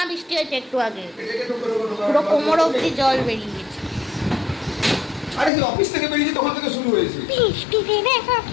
বৃষ্টি হয়েছে একটু আগে, পুরো কোমর অব্দি জল বেরিয়ে গেছে। আরে অফিস থেকে বেরিয়েছে তখন থেকে শুরু হয়েছে বৃষ্টিতে দেখো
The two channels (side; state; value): right; drops out; at 5.5 s